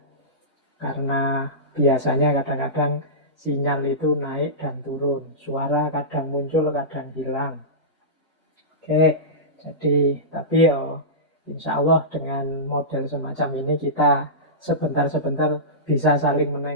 Karena biasanya kadang-kadang sinyal itu naik dan turun. Suara kadang muncul, kadang hilang. Oke, jadi tapi ya insya Allah dengan model semacam ini kita sebentar-sebentar bisa saling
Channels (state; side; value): normal; both; correlation -0.18